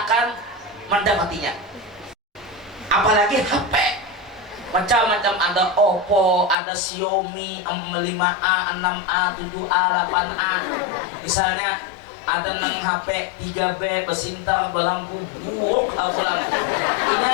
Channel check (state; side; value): drops out; right; at 6.6 s